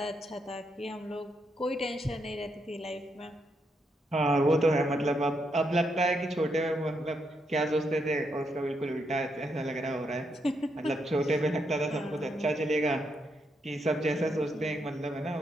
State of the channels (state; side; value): normal; both; correlation 0.79